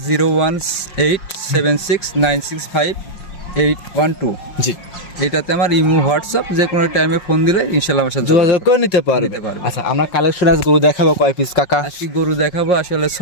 01876965812। জি, এটাতে আমার ইমো হোয়াটসঅ্যাপ, যে কোনো টাইমে ফোন দিলে ইনশাআল্লাহ আমার সাথে যোগাযোগ করে নিতে পারবে। আচ্ছা, আমরা কালেকশন আজ গরু দেখাবো কয় পিস কাকা? আজকে গরু দেখাবো আসলে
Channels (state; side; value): late; right; 5.5 ms